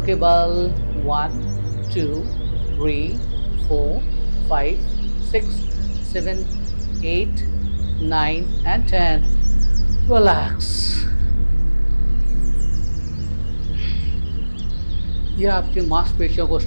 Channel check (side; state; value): both; inverted; correlation -1.00